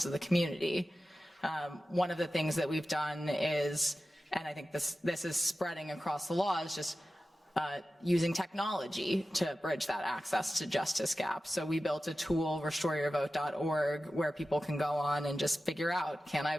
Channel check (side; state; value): both; normal; correlation 0.94